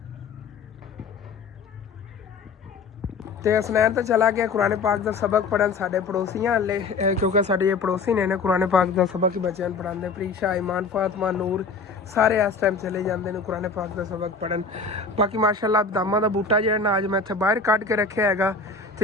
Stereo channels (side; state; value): right; quieter; 4.3 dB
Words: ਤੇ ਹਸਨੈਨ ਤਾਂ ਚਲਾ ਗਿਆ ਕੁਰਾਨ ਪਾਕ ਦਾ ਸਬਕ ਪੜਨ ਸਾਡੇ ਪੜੋਸੀਆਂ ਹਲੇ, ਕਿਉਂਕਿ ਸਾਡੇ ਇਹ ਪੜੋਸੀ ਨੇ ਕੁਰਾਨ ਪਾਕ ਦਾ ਸਬਕ ਹੀ ਬੱਚਿਆਂ ਨੂੰ ਪੜਾਉਂਦੇ। ਪ੍ਰੀਸ਼ਾ, ਇਮਾਨ, ਫਾਤਮਾ, ਨੂਰ ਸਾਰੇ ਇਸ ਟਾਈਮ ਚਲੇ ਜਾਂਦੇ ਨੇ ਕੁਰਾਨ ਪਾਕ ਦਾ ਸਬਕ ਪੜਨ। ਬਾਕੀ ਮਾਸ਼ਾਅੱਲਾ ਬਦਾਮਾਂ ਦਾ ਬੂਟਾ ਜਿਹੜਾ ਨਾ ਅੱਜ ਮੈਂ ਇੱਥੇ ਬਾਹਰ ਕੱਢ ਕੇ ਰੱਖਿਆ ਹੈਗਾ,